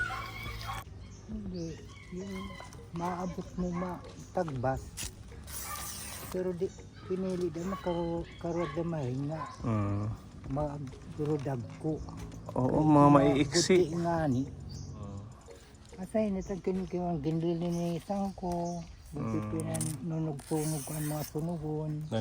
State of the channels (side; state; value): both; identical; correlation 1.00